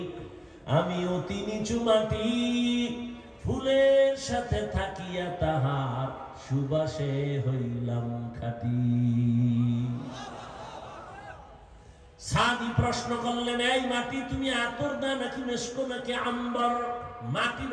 আমি অতি নিচু মাটি। ফুলের সাথে থাকিয়া তাহার সুবাসে হইলাম খাঁটি। সাদি প্রশ্ন করলেন, এই মাটি তুমি আতর দা নাকি মেশকো নাকি আম্বর? মাটি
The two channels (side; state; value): both; identical; correlation 1.00